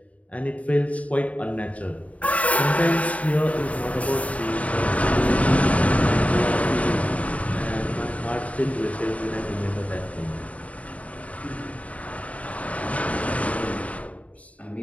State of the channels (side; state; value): right; late; 0.068 ms